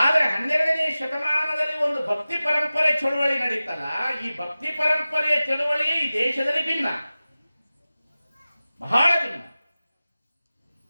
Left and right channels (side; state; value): both; inverted; correlation -0.96